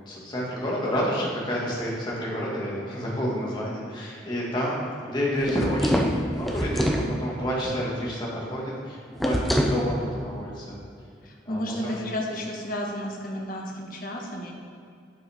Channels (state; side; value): normal; both; correlation 0.66